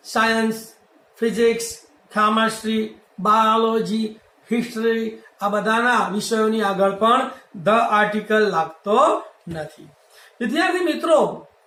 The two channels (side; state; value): both; identical; correlation 1.00